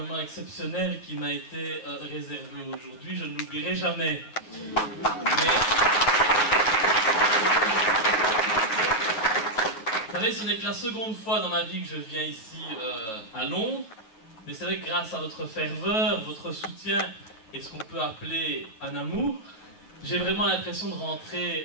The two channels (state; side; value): late; right; 9.1 ms